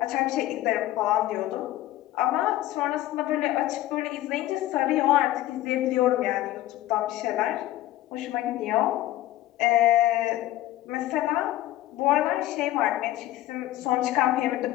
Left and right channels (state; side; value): quieter; right; 15.1 dB